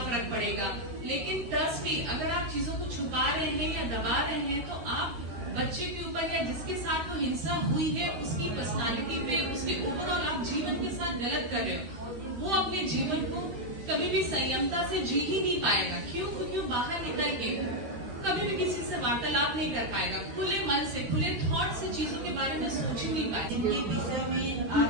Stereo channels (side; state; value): left; late; 12 ms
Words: फर्क पड़ेगा। लेकिन ट्रस्ट मी, अगर आप चीजों को छुपा रहे हैं या दबा रहे हैं तो आप बच्चे के ऊपर या जिसके साथ वो हिंसा हुई है उसकी पर्सनालिटी पे, उसके ओवरऑल आप जीवन के साथ गलत कर रहे हो। वो अपने जीवन को कभी भी संयमता से जी ही नहीं पाएगा। क्यों? क्योंकि वो बाहर निकल के कभी भी किसी से वार्तालाप नहीं कर पाएगा, खुले मन से, खुले थॉट से चीजों के बारे में सोच ही नहीं पाएगा। इनके विषय में आप